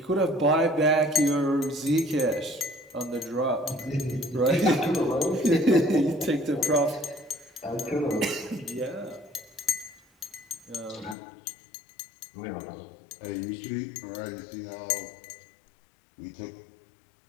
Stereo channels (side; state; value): right; drops out; at 11.2 s